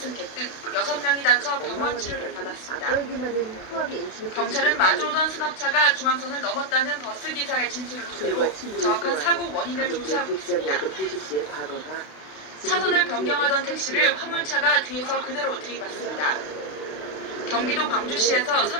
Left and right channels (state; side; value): late; right; 32 ms